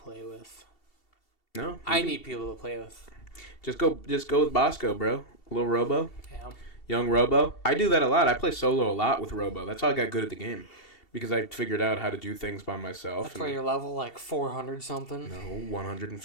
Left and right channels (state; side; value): late; right; 2.7 ms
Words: with. No, I need people to play with. Just go with Bosco, bro. Little Robo. Yeah. Young Robo. I do that a lot. I play solo a lot with Robo. That's how I got good at the game. Because I figured out how to do things by myself. That's why you're level like 400 something. No,